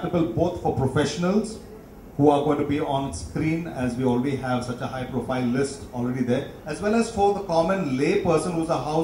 both for professionals who are going to be on screen, as we already have such a high profile list already there, as well as for the common lay person who's a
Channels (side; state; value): both; identical; correlation 1.00